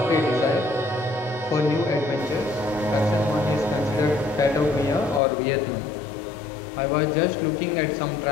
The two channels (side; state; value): right; drops out; at 5.2 s